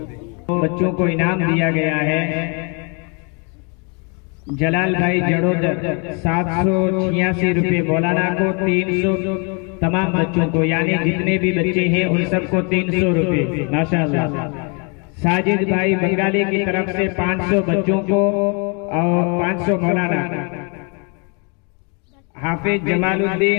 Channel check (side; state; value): right; quieter; 34.8 dB